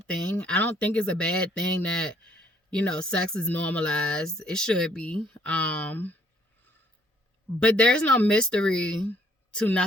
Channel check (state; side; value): normal; both; correlation 0.65